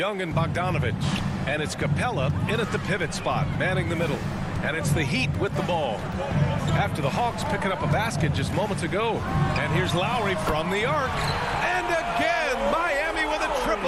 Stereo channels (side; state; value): both; identical; correlation 1.00